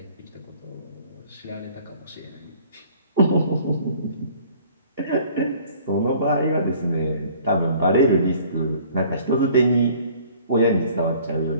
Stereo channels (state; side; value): inverted; both; correlation -0.54